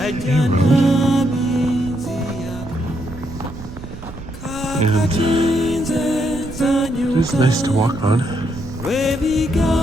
road. And it is nice to walk on.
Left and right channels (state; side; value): noise; right; rumble, 14 dB below the sound